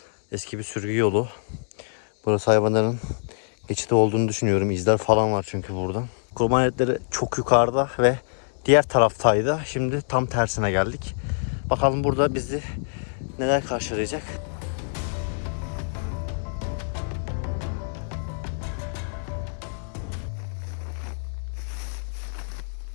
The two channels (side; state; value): right; silent; digital silence